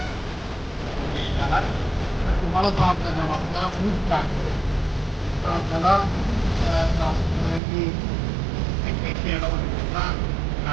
तुम्हाला तो आपला जबाबदार खूप काय आपल्याला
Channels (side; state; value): left; drops out; at 7.6 s